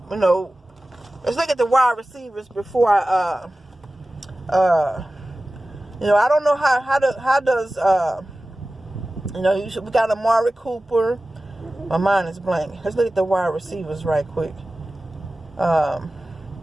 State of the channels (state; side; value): normal; both; correlation 0.96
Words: you know, let's look at the wide receivers before you know, I don't know how does, you know, we got Amari Cooper. My mind is blank. Let's look at the wide receivers right quick. You